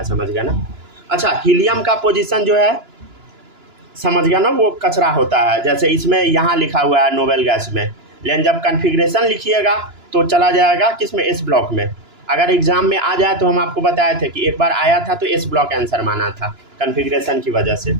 समझ गया ना। अच्छा हीलियम का पोजीशन जो है, समझ गया ना, वो कचरा होता है। जैसे इसमें यहाँ लिखा हुआ है नोबेल गैस में, लेकिन जब कन्फिग्रेशन लिखिएगा तो चला जाएगा किसमें, एस ब्लॉक में। अगर एग्ज़ाम में आ जाए तो हम आपको बताए थे कि एक बार आया था तो एस ब्लॉक आंसर माना था कन्फिग्रेशन की वजह से,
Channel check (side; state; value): left; late; 2.9 ms